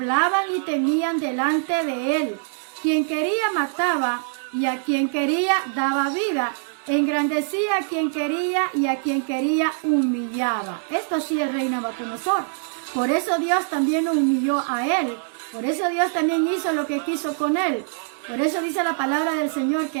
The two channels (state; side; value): silent; left; digital silence